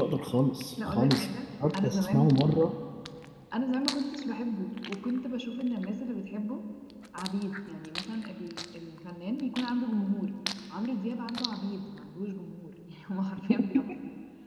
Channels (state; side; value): identical; both; correlation 1.00